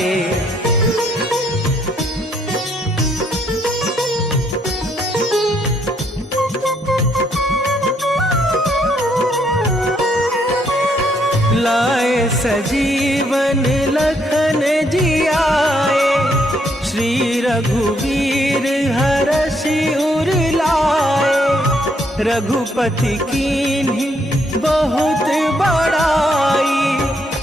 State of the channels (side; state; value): both; normal; correlation 0.72